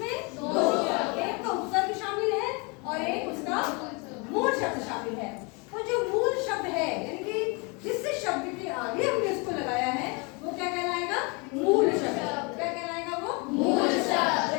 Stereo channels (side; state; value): right; quieter; 30.6 dB